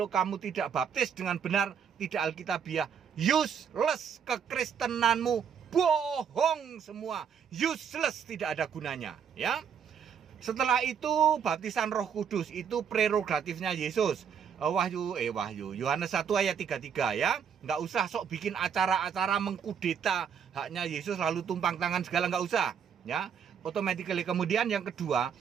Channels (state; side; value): quieter; left; 7.5 dB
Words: kamu tidak baptis dengan benar, tidak Alkitabiah, useless kekristenanmu, bohong semua, useless, tidak ada gunanya ya. Setelah itu baptisan Roh Kudus, itu prerogatifnya Yesus. Yohanes 1 ayat 33 ya. Nggak usah sok bikin acara-acara mengkudeta haknya Yesus lalu tumpang tangan segala, nggak usah ya. Automatically. Kemudian yang kedua,